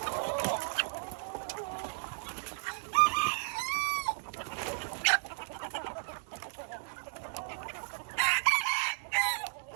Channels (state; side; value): silent; left; digital silence